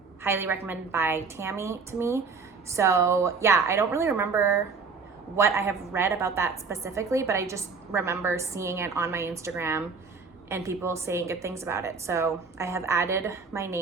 highly recommended by Tammy to me. So yeah, I don't really remember what I have read about that specifically, but I just remember seeing it on my Instagram and people saying good things about it. So I have added my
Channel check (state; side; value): quieter; left; 5.0 dB